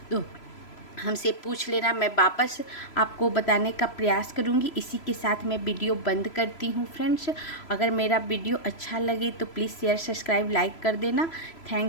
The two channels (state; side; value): late; right; 3.0 ms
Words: तो हमसे पूछ लेना, मैं वापस आपको बताने का प्रयास करूंगी। इसी के साथ मैं वीडियो बंद करती हूं फ्रेंड्स। अगर मेरा वीडियो अच्छा लगे तो प्लीज़ शेयर, सब्सक्राइब, लाइक कर देना।